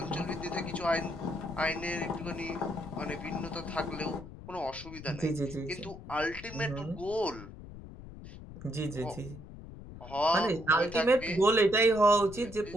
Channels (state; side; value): noise; left; rumble, 14 dB below the sound